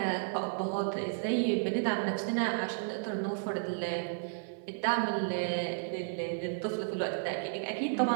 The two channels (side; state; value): left; silent; digital silence